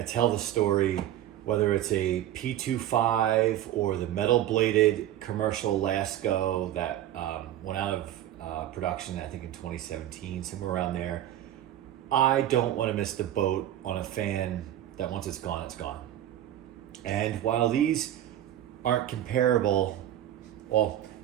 tell the story, whether it's a P25 or the metal bladed commercial Lasko that went out of production, I think in 2017, somewhere around there. I don't want to miss the boat on a fan that once it's gone, it's gone. And while these aren't comparable, well,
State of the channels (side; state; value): left; quieter; 12.3 dB